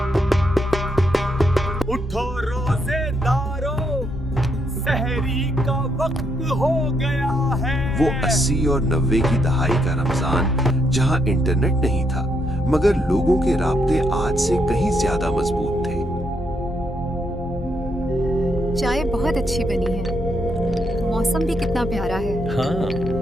उठो रोजेदारों, सहरी का वक्त हो गया है। वो 80 और 90 की दहाई का रमजान जहाँ इंटरनेट नहीं था मगर लोगों के राब्ते आज से कहीं ज्यादा मजबूत थे। चाय बहुत अच्छी बनी है, मौसम भी कितना प्यारा है। हाँ,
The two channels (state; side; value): normal; both; correlation 0.77